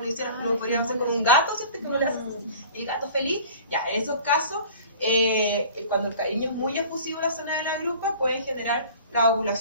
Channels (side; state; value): both; inverted; correlation -0.44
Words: podríamos hacer con un gato, ¿cierto? Que uno le hace el gato feliz. Ya, en esos casos, cuando el cariño es muy efusivo en la zona de la grupa, puede generar la